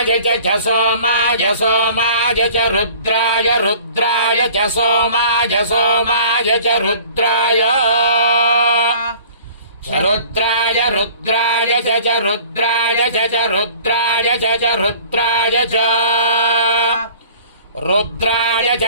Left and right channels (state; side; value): inverted; both; correlation -0.47